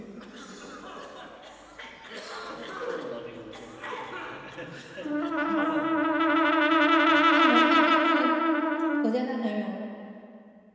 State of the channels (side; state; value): both; identical; correlation 1.00